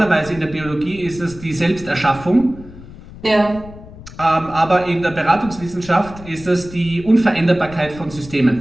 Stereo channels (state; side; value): noise; left; rumble, 17 dB below the sound